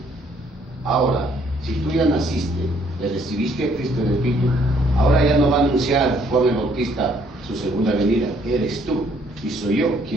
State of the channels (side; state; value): both; normal; correlation 0.65